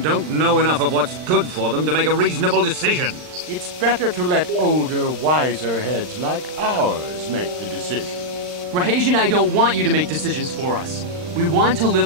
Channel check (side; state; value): left; late; 39 ms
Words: don't know enough of what's good for them to make a reasonable decision. It's better to let older, wiser heads like ours make the decisions. Rahesh and I don't want you to make decisions for us. We want to